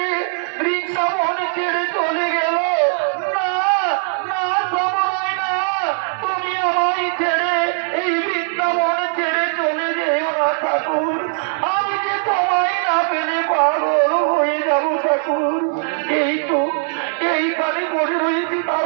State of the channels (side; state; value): left; silent; 66 dB below the other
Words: বৃন্দাবন ছেড়ে চলে গেল। না না সবাই না, তুমি আমায় ছেড়ে এই বৃন্দাবন ছেড়ে চলে যেও না ঠাকুর। আমি যে তোমায় না পেলে পাগল হয়ে যাবো ঠাকুর। এই তো এইখানে পড়ে রয়েছি